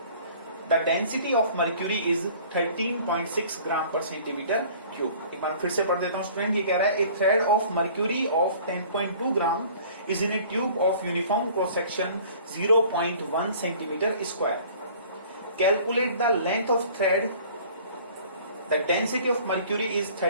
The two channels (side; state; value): both; inverted; correlation -0.49